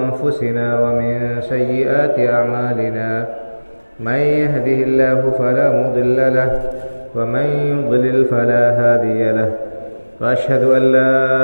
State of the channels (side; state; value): both; inverted; correlation -1.00